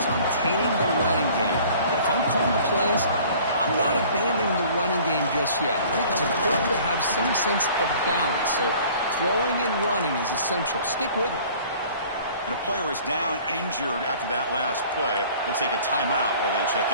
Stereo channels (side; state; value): both; inverted; correlation -0.50